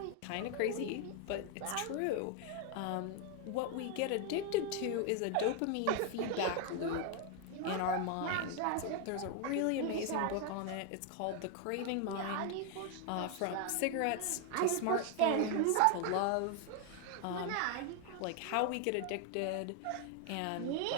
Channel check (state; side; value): different; both; correlation 0.00